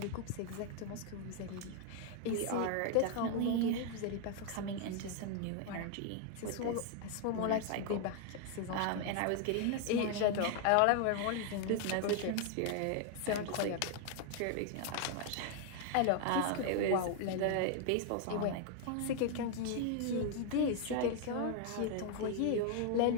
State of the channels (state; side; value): different; both; correlation 0.00